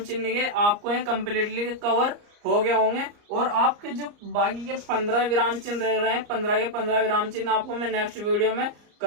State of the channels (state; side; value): late; left; 34 ms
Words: चिन्ह के, आपको ये कम्प्लीटली कवर हो गए होंगे। और आपके जो बाकी के 15 विराम चिन्ह रह रहे हैं, 15 के 15 विराम चिन्ह आपको मैं नेक्स्ट वीडियो में